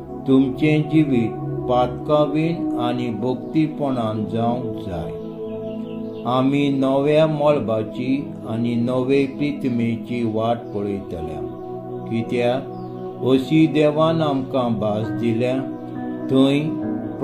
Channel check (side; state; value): both; identical; correlation 1.00